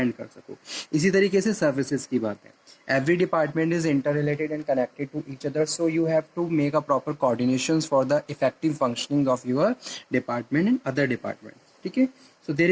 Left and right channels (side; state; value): both; identical; correlation 1.00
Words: कर सको। इसी तरीके से सर्विसेज की बात है, every department is inter related and connected to each other, so you have to make a proper coordination for the effective functioning of your department and other department. ठीक है, so there